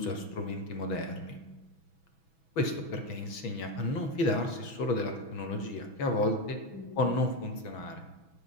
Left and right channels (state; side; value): late; right; 6.1 ms